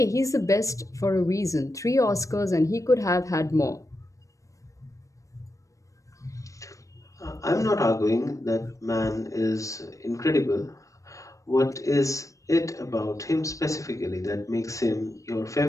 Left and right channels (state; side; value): late; right; 0.16 ms